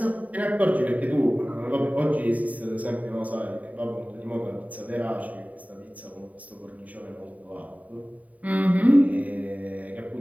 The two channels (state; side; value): late; left; 0.071 ms